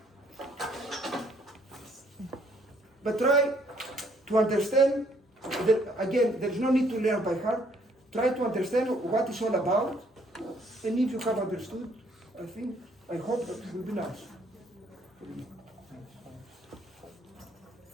But try to understand, again, there's no need to learn by heart. Try to understand what it's all about, and if you have understood, I hope that it will be nice.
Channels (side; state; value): both; normal; correlation 0.66